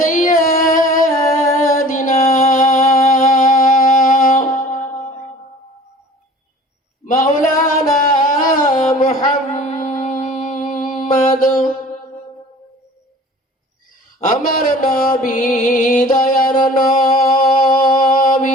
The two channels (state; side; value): normal; both; correlation 0.45